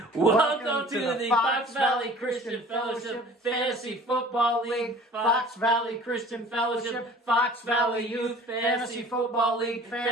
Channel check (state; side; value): normal; both; correlation 0.47